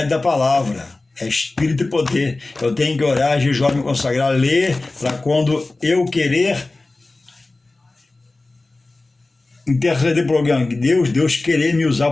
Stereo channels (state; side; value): quieter; right; 3.1 dB